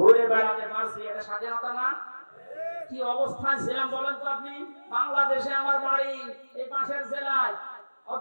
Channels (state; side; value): inverted; both; correlation -1.00